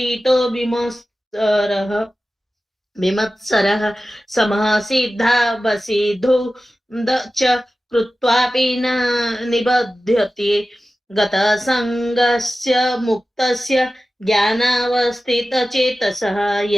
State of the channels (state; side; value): normal; both; correlation 0.95